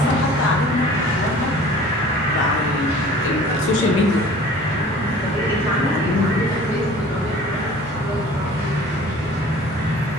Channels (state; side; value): normal; both; correlation 0.46